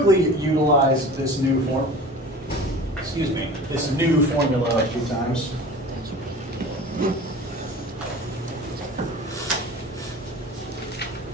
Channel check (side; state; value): both; normal; correlation 0.39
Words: utilize this new this new formula a few times.